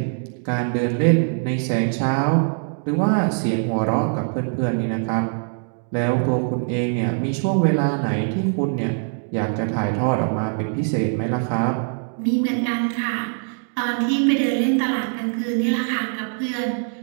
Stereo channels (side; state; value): left; silent; 58 dB below the other